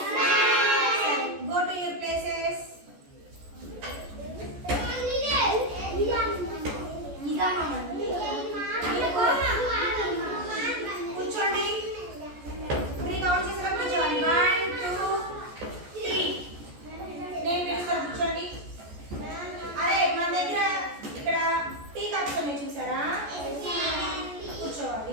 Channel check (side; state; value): left; late; 14 ms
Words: సరే, గో టు యువర్ ప్లేసెస్. కూర్చోండి. 3 కౌంట్ చేసిన కూర్చోండి. 1 2 3. నేను పిలుస్తాను, కూర్చోండి. అరే మన దగ్గర ఇక్కడ టీ కప్స్ ఉన్నాయి చూసారా?